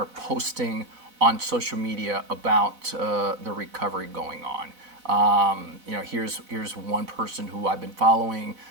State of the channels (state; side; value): late; left; 4.0 ms